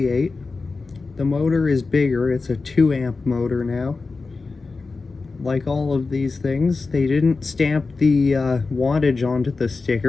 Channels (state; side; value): quieter; right; 4.1 dB